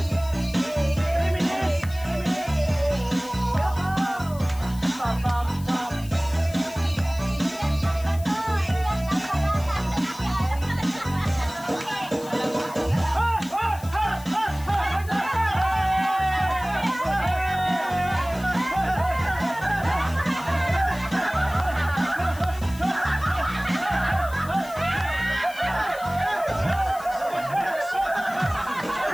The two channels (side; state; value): left; noise; hiss, 18 dB below the sound